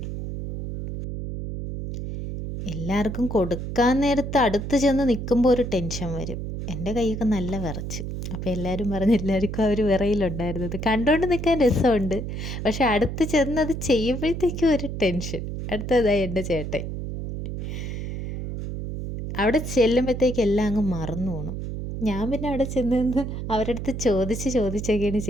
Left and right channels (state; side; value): noise; right; hum, 5 dB below the sound